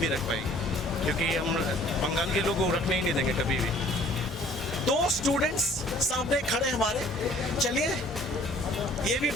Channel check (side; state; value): both; normal; correlation 0.54